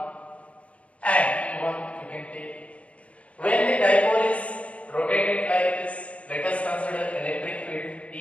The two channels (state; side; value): late; right; 0.063 ms